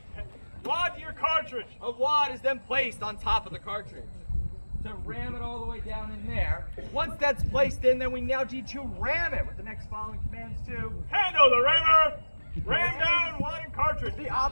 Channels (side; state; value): both; inverted; correlation -1.00